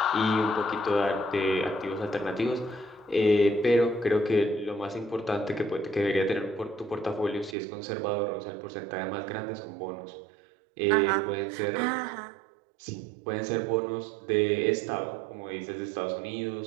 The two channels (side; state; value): left; drops out; at 7.6 s